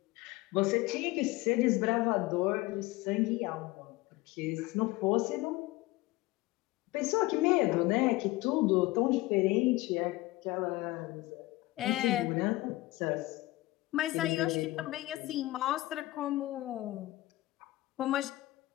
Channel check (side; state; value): right; quieter; 19.2 dB